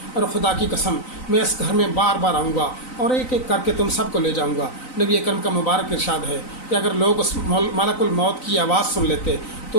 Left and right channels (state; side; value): late; right; 3.9 ms